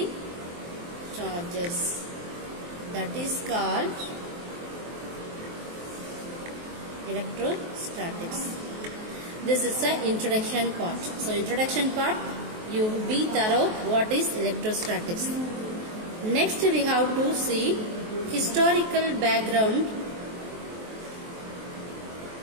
charges. That is called electrostatics. This is the introduction part. So introduction part, you be thorough what is electrostatics. Next we have to see historical background.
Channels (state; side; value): late; left; 23 ms